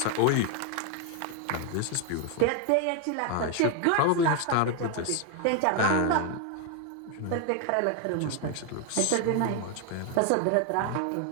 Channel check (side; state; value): both; different; correlation 0.01